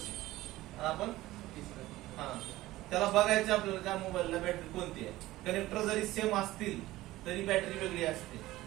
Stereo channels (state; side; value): quieter; left; 17.0 dB